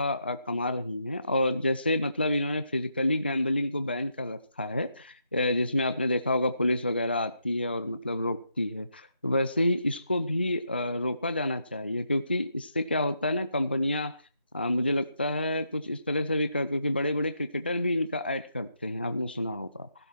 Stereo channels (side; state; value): both; inverted; correlation -0.80